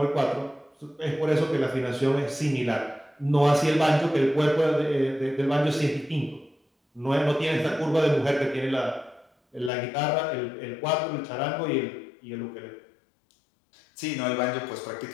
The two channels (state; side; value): drops out; right; at 9.7 s